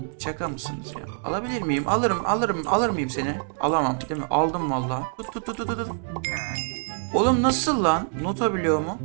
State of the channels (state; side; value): silent; left; 60 dB below the other